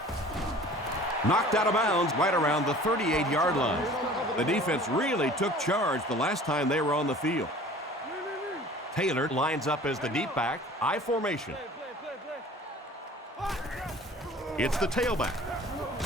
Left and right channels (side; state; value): both; normal; correlation 0.46